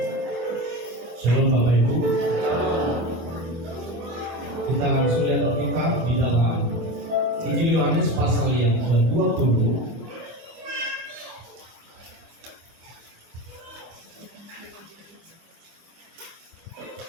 Shalom Bapak Ibu. Kita langsung lihat Alkitab di dalam Injil Yohanes pasal yang ke-20.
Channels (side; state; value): left; late; 25 ms